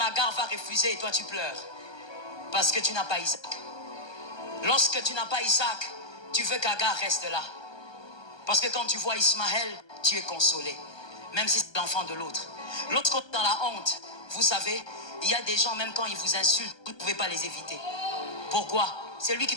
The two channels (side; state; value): right; late; 1.2 ms